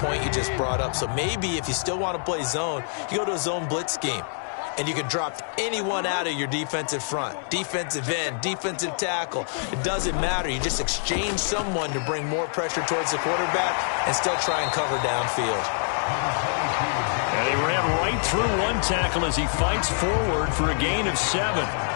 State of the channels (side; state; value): right; silent; digital silence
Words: you just brought up. So maybe if you still want to play zone, you go to a zone blitz scheme. And you can drop anyone out of your defensive front. Defensive end, defensive tackle. It doesn't matter. You just exchange someone to bring more pressure towards the quarterback and still try and cover downfield. And he ran right through one tackle as he fights forward for a gain of 7.